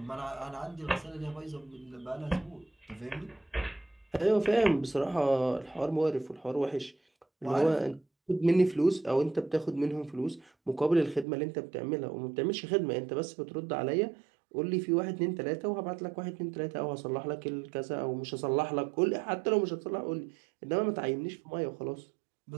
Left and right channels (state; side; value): drops out; left; at 11.2 s